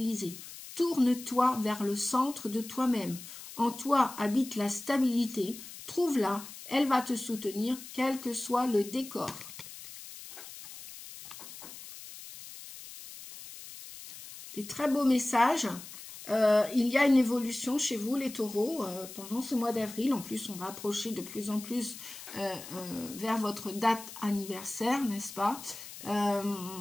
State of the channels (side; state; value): left; noise; hiss, 14 dB below the sound